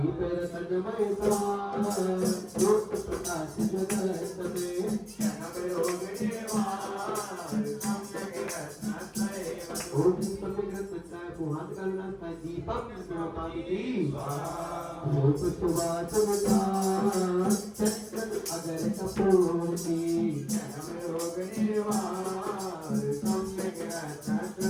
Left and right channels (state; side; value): identical; both; correlation 1.00